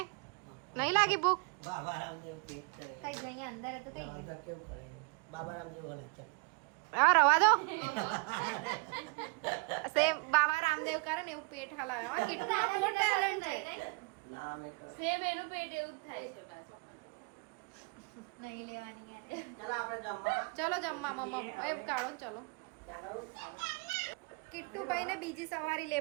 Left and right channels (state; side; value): quieter; left; 32.4 dB